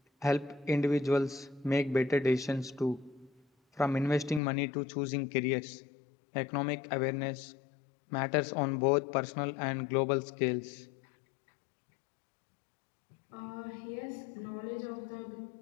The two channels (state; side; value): drops out; right; at 4.4 s